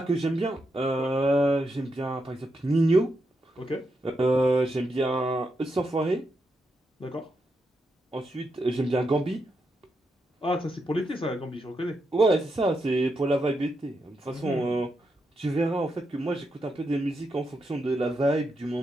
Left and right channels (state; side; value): normal; both; correlation 0.84